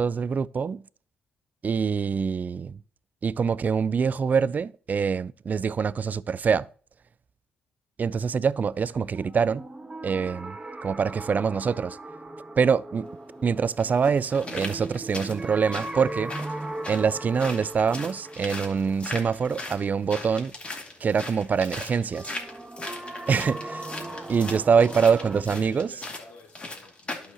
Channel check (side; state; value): left; quieter; 5.4 dB